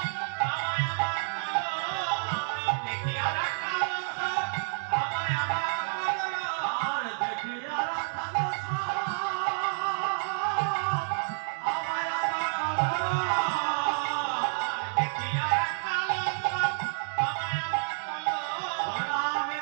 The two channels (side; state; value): left; silent; digital silence